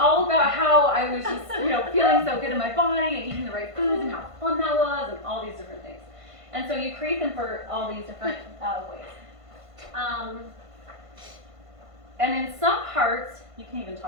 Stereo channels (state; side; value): late; left; 1.5 ms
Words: about how I was just, feeling so good in my body and eating the right foods and how fun that was and all these different things. And so you create them for all these different ways. And in some parts, you can even